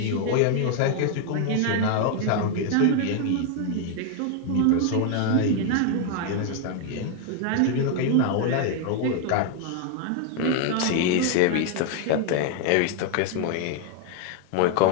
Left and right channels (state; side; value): different; both; correlation 0.00